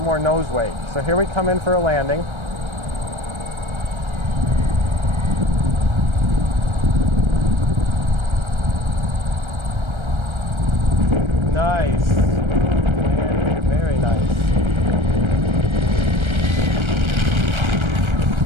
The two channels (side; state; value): left; late; 1.3 ms